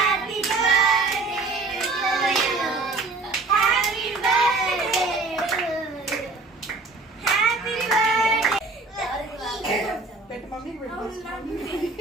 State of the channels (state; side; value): quieter; left; 3.6 dB